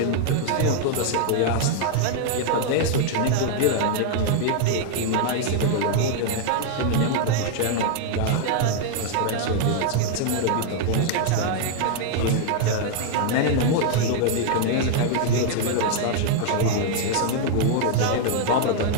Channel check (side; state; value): both; different; correlation 0.00